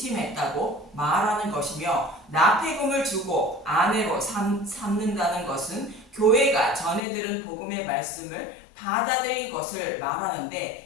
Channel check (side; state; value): right; drops out; at 7.0 s